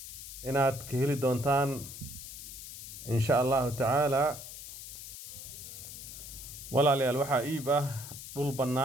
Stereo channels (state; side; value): noise; left; hiss, 11 dB below the sound